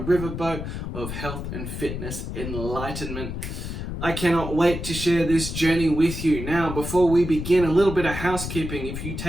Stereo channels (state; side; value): noise; left; rumble, 6 dB below the sound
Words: of health and fitness enlightenment. I cannot wait to share this journey with you. Now, before we begin, a little bit of housekeeping. If you